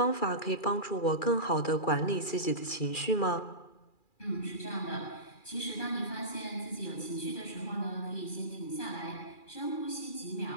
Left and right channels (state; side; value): late; right; 2.4 ms